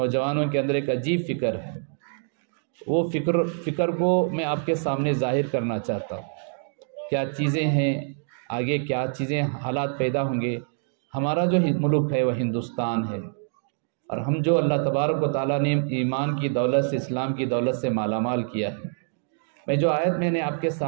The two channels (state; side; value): silent; left; digital silence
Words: کے اندر ایک عجیب فکر ہے۔ وہ فکر کو میں آپ کے سامنے ظاہر کرنا چاہتا ہوں۔ کیا چیزیں ہیں، آگے کیا چیزیں حالات پیدا ہوں گے۔ ہمارا جو ملک ہے وہ ہندوستان ہے، اور ہم جو اللہ تبارک و تعالیٰ نے ایمان کی دولت سے، اسلام کی دولت سے مالا مال کیا ہے۔ میں جو آیت میں نے آپ کے